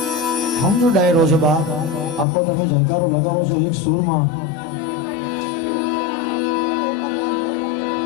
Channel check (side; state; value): right; drops out; at 2.2 s